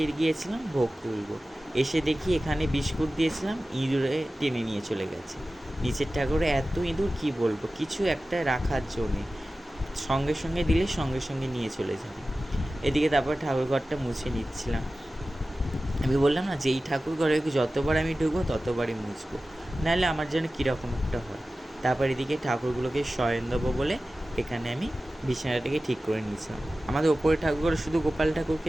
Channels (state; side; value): normal; both; correlation 0.95